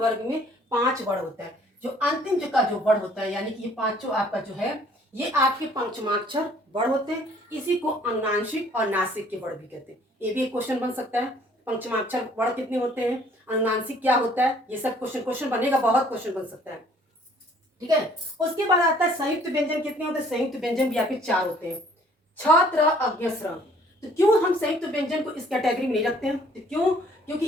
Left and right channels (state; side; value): normal; both; correlation 0.58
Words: में 5 वर्ग होता है। जो अंतिम जो का जो वर्ग होता है, यानी कि ये पांचों आपका जो है ये आपके पंचमाक्षर वर्ग होते हैं, इसी को अनुनासिक और नासिक के वर्ग भी कहते हैं। ये भी एक क्वेश्चन बन सकता है, पंचमाक्षर वर्ग कितने होते हैं, अनुनासिक क्या होता है, ये सब क्वेश्चन बनेगा, बहुत क्वेश्चन बन सकता है, ठीक है। उसके बाद आता है संयुक्त व्यंजन कितने होते हैं, संयुक्त व्यंजन भी आपके 4 होते हैं, छ त्र अज्ञ स्र। तो क्यों हम संयुक्त व्यंजन को इस कैटेगरी में नहीं रखते हैं, तो क्यों, क्योंकि